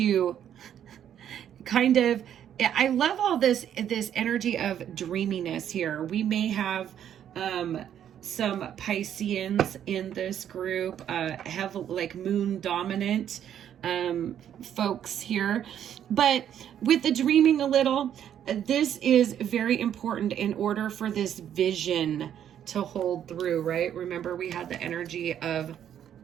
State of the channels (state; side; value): quieter; left; 9.9 dB